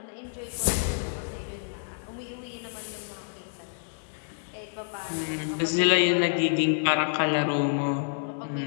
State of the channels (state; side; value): silent; right; digital silence